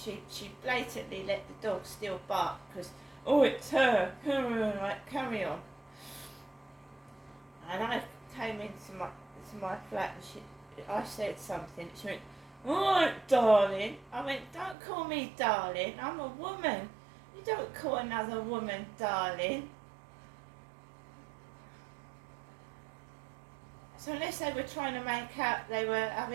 blatantly let the dog still bark, because, oh, it's her, like, carry on. And I came into my flat, and I said something, she went, alright, darling. I went, don't call me darling, I'm a woman. You don't call another woman darling. So unless they were trying to make out they were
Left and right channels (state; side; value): drops out; left; at 14.8 s